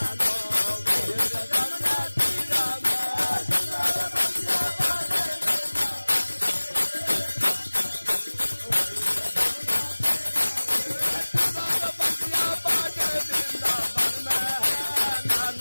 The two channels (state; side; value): inverted; both; correlation -1.00